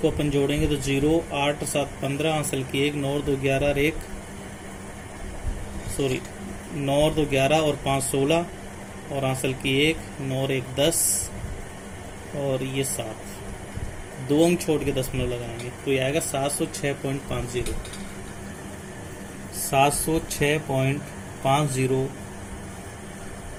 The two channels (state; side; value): identical; both; correlation 1.00